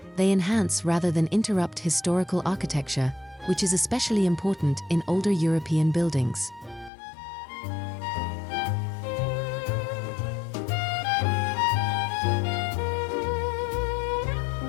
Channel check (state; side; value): drops out; right; at 6.9 s